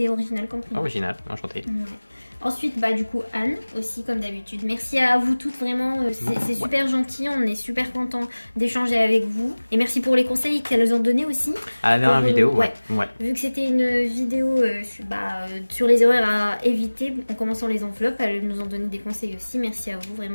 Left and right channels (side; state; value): both; inverted; correlation -1.00